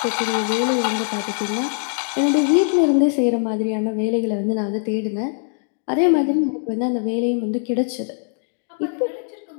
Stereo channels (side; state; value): right; silent; 62 dB below the other